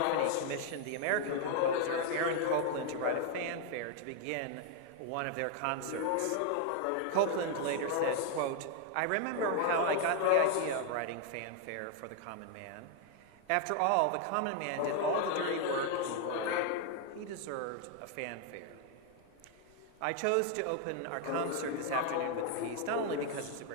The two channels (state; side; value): different; both; correlation 0.01